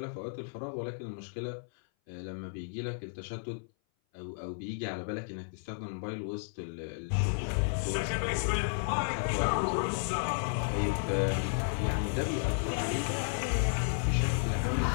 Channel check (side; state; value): right; silent; 56 dB below the other